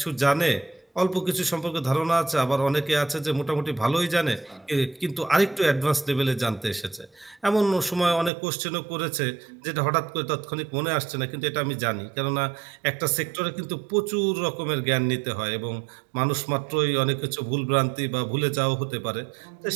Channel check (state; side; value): drops out; left; at 8.3 s